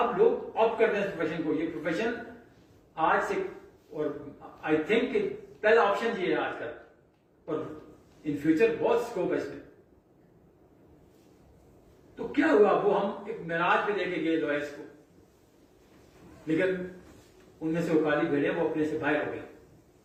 لوگ آپٹ کرتے ہیں اس پروفیشن کو. یہ پروفیشن آج سے, اور آئی تھنک کہ پہلا آپشن یہ ہے آج کل, اور ان فیوچر بہت اسکوپ ہے اس میں. تو کیا ہوا, وہ ہم ایک معراج پہ لے کے گئے لوئرس کو, لیکن ان میں سے وہ کالی بھیڑیں وہ اپنے سے باہر ہو گئی.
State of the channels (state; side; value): identical; both; correlation 1.00